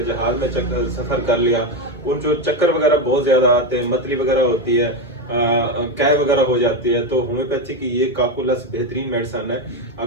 जहाज में सफर कर लिया, उन जो चक्कर वगैरह बहुत ज्यादा आते हैं, मतली वगैरह होती है, कैब वगैरह हो जाती है, तो होम्योपैथी की ये काकुलस बेहतरीन मेडिसिन है।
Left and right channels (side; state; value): both; normal; correlation 0.11